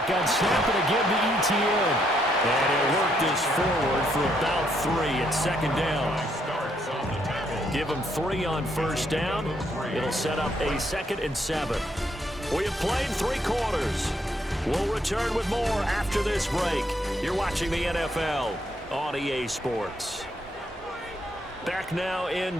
snap and again to ETN. And he'll work this forward for about 3 at 2nd down. Give him 3 on first down. It'll set up a 2nd and 7. We have played 3 quarters. We'll return with more after this break. You're watching the NFL on EA Sports. Back now in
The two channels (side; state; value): both; normal; correlation 0.73